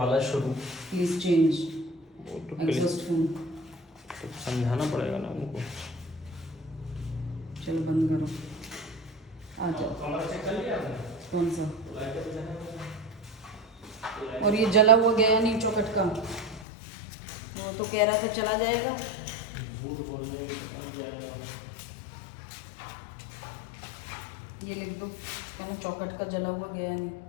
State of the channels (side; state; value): right; drops out; at 16.7 s